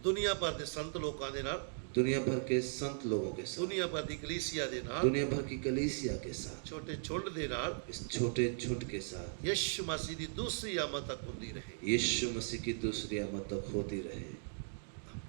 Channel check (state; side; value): silent; left; digital silence